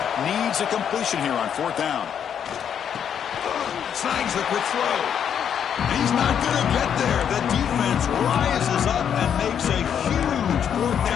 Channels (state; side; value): quieter; right; 8.4 dB